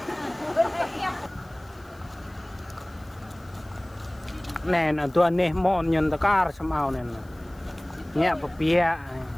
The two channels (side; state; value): left; noise; hiss, 30 dB below the sound